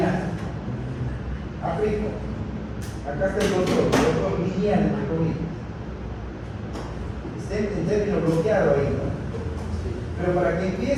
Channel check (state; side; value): identical; both; correlation 1.00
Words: Aplico. Acá está el rotor lineal, entre comillas. Está en término bloqueado ahí, ¿no? Pero para que